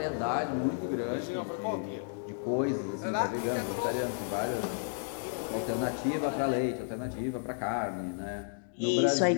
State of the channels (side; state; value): right; silent; digital silence